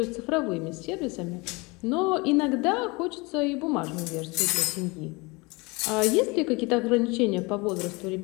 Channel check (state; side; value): quieter; right; 26.1 dB